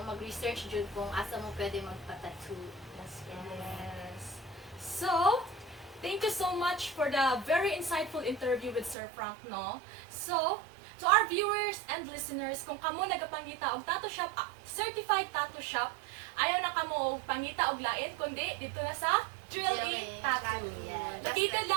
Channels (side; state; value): left; drops out; at 9.0 s